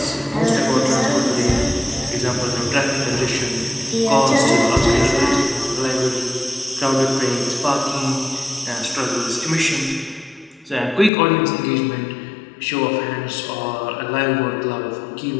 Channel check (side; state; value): right; drops out; at 11.1 s